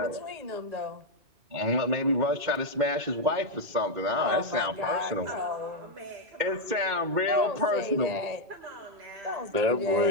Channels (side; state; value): left; late; 2.1 ms